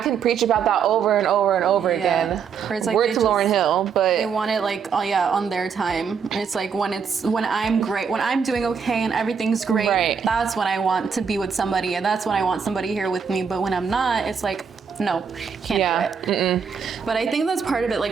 preach about that over and over and over again. It's like Word to Lauryn Hill, but they want it like, on their time. It's like when I'm great, when I'm doing okay and everything's great, that's when I want to be with somebody, and that's when I want somebody here with me. But when I'm not, it's like, no, can't do it. But I think that's part of it,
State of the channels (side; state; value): left; quieter; 6.5 dB